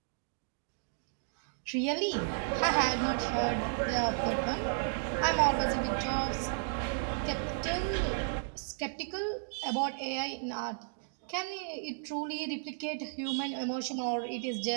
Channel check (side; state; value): left; silent; digital silence